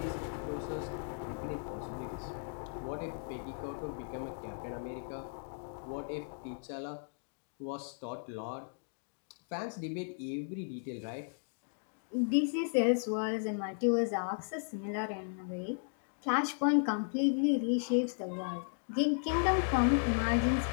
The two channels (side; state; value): right; silent; digital silence